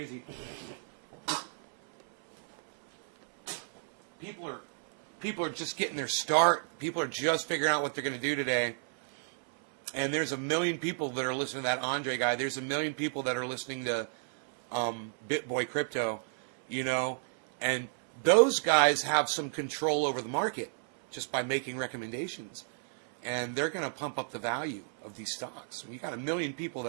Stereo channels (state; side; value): silent; left; 57 dB below the other